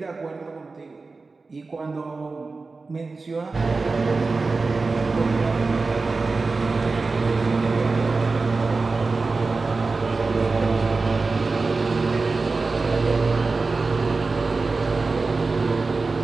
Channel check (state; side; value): quieter; left; 3.9 dB